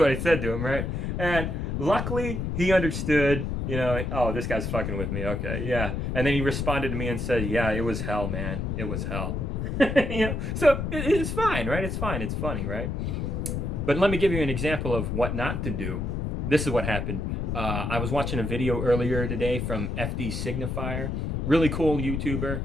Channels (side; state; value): left; noise; rumble, 2 dB below the sound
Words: I said to him, right? And luckily, he understood, you know, oh, this guy's fucking with me. Okay, yeah. And then he responded to me and said, yeah, it was hell, man. It was hell. You know, so it's fine, right? It's fine. It's funny, right? But let me give you an example of what not to do. This is what happened. I was watching a video earlier today from FD Signifier. Really cool YouTuber.